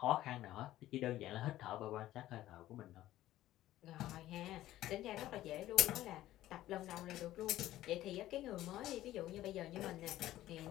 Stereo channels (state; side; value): quieter; right; 14.5 dB